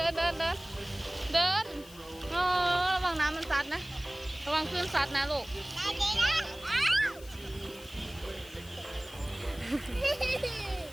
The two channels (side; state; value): left; noise; hiss, 20 dB below the sound